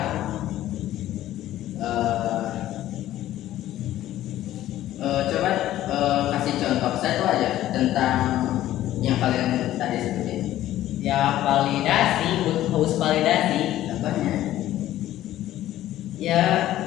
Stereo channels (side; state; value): right; quieter; 13.7 dB